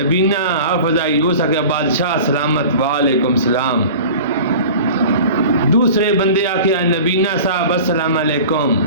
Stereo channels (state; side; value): inverted; both; correlation -0.39